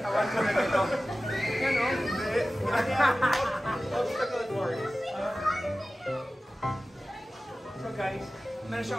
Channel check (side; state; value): both; normal; correlation 0.96